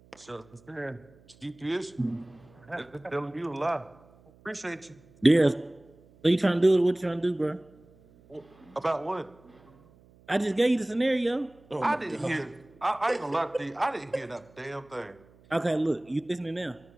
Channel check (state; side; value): noise; right; hum, 27 dB below the sound